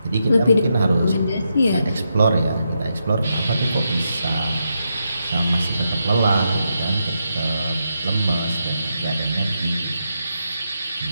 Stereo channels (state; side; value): inverted; both; correlation -0.83